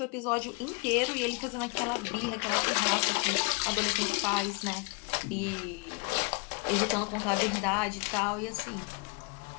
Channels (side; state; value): right; quieter; 32.1 dB